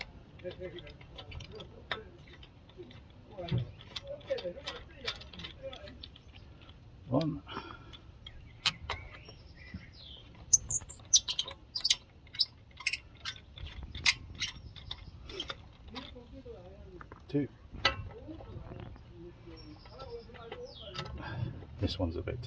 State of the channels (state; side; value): identical; both; correlation 1.00